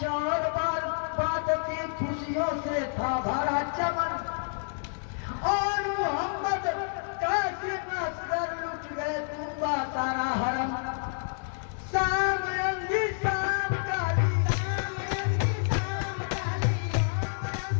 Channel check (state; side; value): silent; right; digital silence